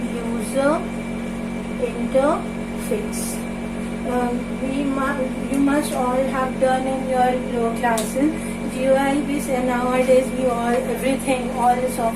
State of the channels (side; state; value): both; identical; correlation 1.00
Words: user interface. You must all have done in your lower classes GUI based, and nowadays all the